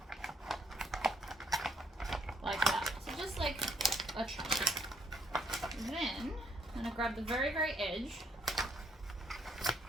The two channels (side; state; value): both; normal; correlation 0.69